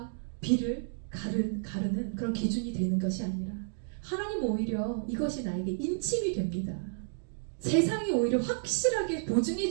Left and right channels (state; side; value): silent; left; digital silence